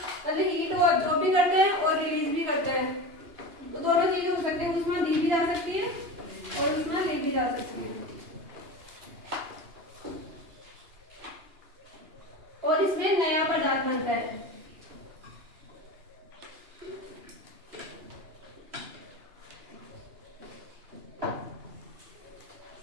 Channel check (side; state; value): left; late; 2.8 ms